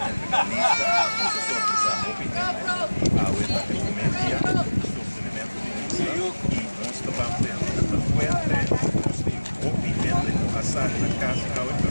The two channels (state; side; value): inverted; both; correlation -1.00